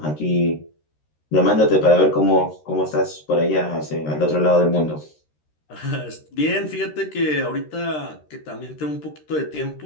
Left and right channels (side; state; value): right; late; 13 ms